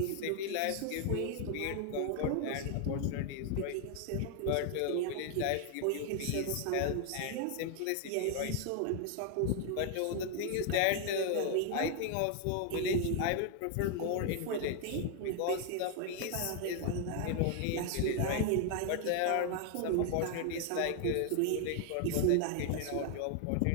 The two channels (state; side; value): different; both; correlation 0.00